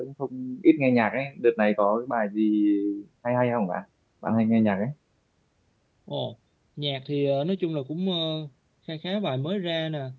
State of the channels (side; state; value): both; identical; correlation 1.00